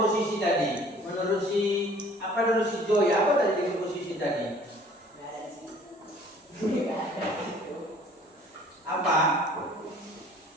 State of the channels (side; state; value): both; normal; correlation 0.53